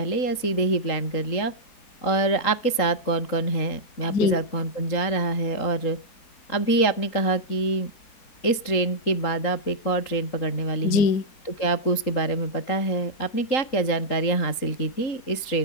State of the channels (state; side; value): late; right; 3.8 ms